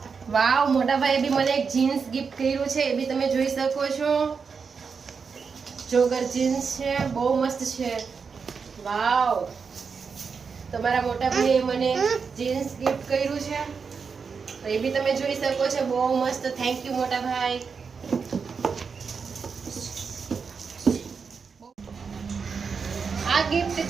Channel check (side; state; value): left; quieter; 5.6 dB